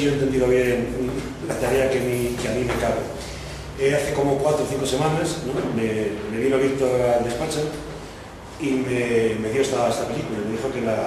yo he entendido bien la tarea que a mí me cabe. Hace como 4 o 5 semanas, ¿no? me vino Víctor al despacho y me dio esta película, me dijo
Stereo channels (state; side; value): identical; both; correlation 1.00